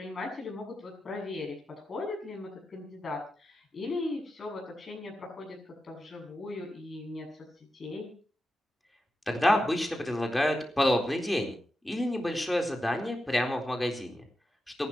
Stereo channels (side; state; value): both; normal; correlation 0.90